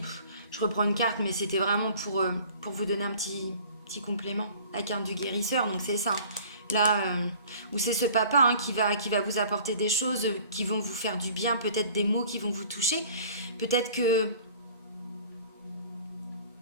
je reprends une carte, mais c'était vraiment pour vous donner un petit complément. La carte du guérisseur, donc c'est ça. Là, où c'est ce papa, hein, qui va vous apporter des choses qui vont vous faire du bien, peut-être des mots qui vont vous toucher. Peut-être que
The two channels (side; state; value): both; inverted; correlation -0.48